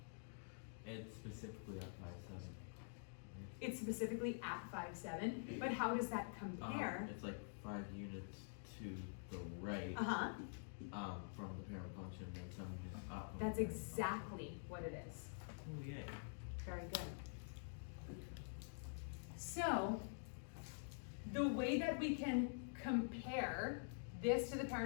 It's specifically at 5, 7. it's specifically at 5, 7, but how does that compare? It's like 5 units to the right Uh-huh, from the parent function, then 7 units up. from the that's parent exactly what it is. function. Oh, yay. Very good. So, the way that we can compare this to the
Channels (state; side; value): silent; right; digital silence